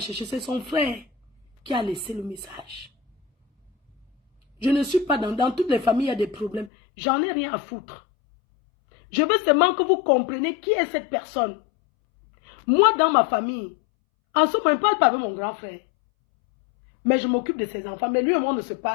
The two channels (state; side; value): drops out; right; at 6.7 s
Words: chercher, c'est son frère qui a laissé le message. Je ne suis pas dans toutes les familles, il y a des problèmes. J'en ai rien à foutre. Je veux seulement que vous compreniez qui est cette personne. Moi, dans ma famille, en ce moment, je ne parle pas avec mon grand frère. Mais je m'occupe de ses enfants. Mais lui et moi, on ne se